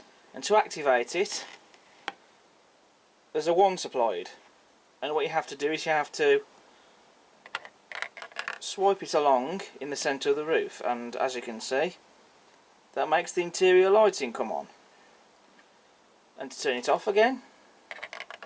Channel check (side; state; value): both; identical; correlation 1.00